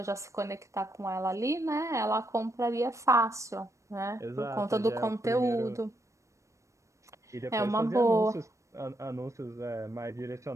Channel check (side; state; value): left; late; 0.15 ms